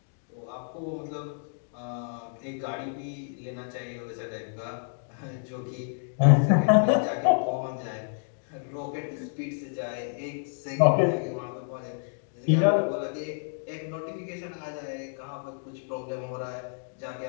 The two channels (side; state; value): right; silent; digital silence